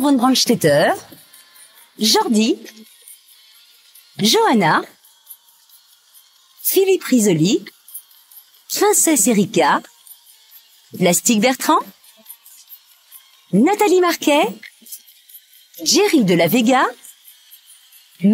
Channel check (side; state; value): both; identical; correlation 1.00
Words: Brandstetter, Jordi, Johanna, Philippe Risoli, Princesse Erika, Plastique Bertrand, Nathalie Marquet, Jerry de la Vega,